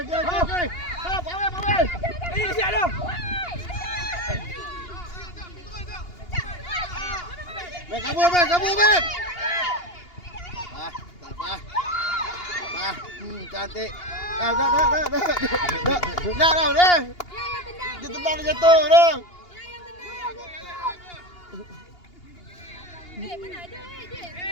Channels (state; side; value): late; right; 2.8 ms